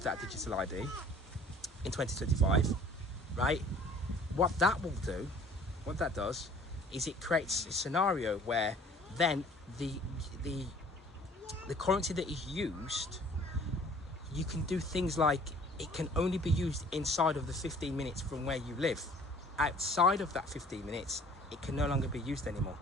ID in 2025, right? What that does is it creates a scenario where then the currency that is used, you can do things like it can only be used inside of the 15 minutes from where you live. Outside of that 15 minutes, it can no longer be used anymore.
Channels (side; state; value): both; normal; correlation 0.52